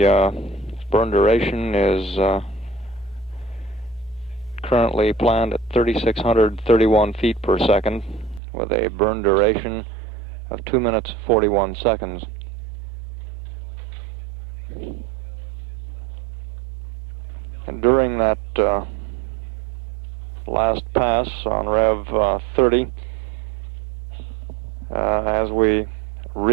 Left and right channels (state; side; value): drops out; left; at 8.4 s